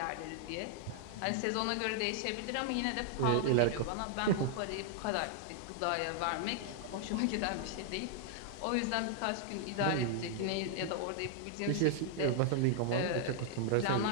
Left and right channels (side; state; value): both; different; correlation 0.00